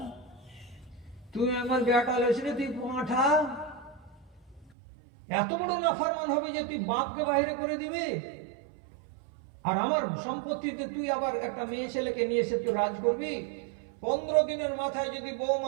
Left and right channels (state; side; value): drops out; left; at 4.7 s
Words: তুই আমার বেটা লইছিস, তুই পাঁঠা, এত বড় নাফরমান হবে যে তুই বাপকে বাইরে করে দিবে, আর আমার সম্পত্তিতে তুই আবার একটা মেয়ে ছেলেকে নিয়ে এসে তুই রাজ করবি। 15 দিনের মাথায় যদি